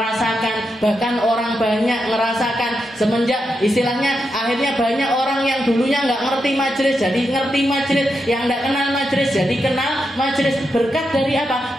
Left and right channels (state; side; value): normal; both; correlation 0.85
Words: bahkan orang banyak ngerasakan semenjak istilahnya akhirnya banyak orang yang dulunya nggak ngerti majelis jadi ngerti majelis, yang nggak kenal majelis jadi kenal majelis. Berkat dari